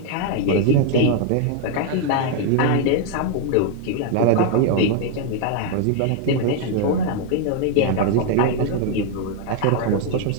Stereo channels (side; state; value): both; different; correlation 0.01